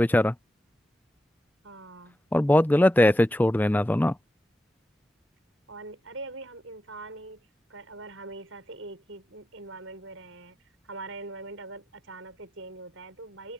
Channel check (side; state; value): both; normal; correlation 0.91